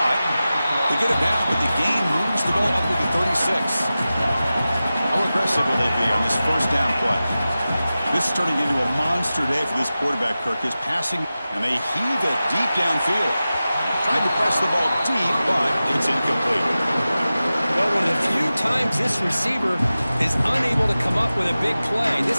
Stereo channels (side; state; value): both; inverted; correlation -0.95